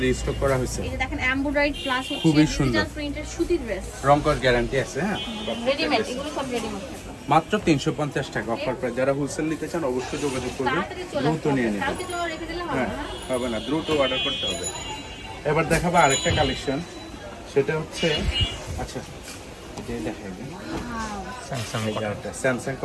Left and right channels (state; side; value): identical; both; correlation 1.00